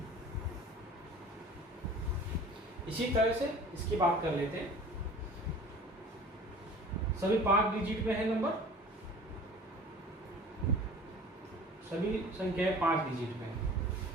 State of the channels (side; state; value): both; normal; correlation 0.44